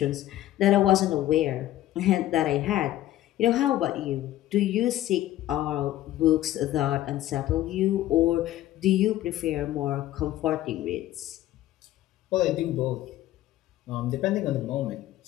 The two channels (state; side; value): quieter; right; 14.1 dB